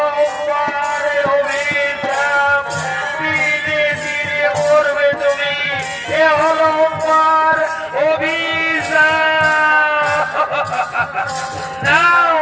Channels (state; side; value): identical; both; correlation 1.00